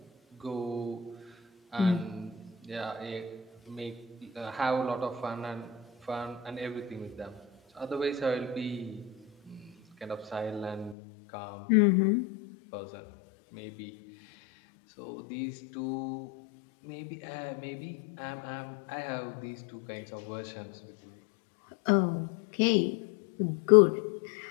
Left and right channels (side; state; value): right; drops out; at 11.0 s